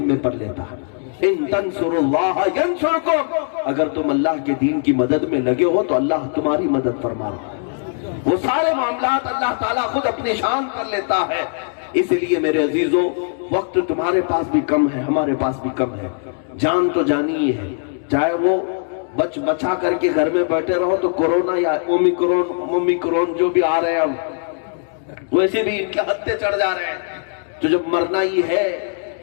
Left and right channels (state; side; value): silent; right; digital silence